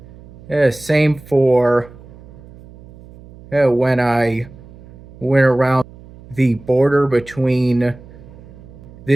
Same for when I went around the border between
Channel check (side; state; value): right; noise; hum, 20 dB below the sound